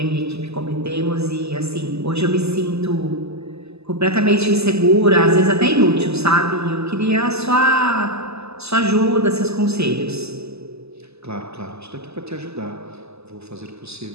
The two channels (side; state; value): left; late; 0.79 ms